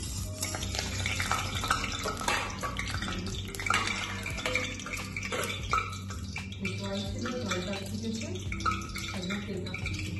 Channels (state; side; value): identical; both; correlation 1.00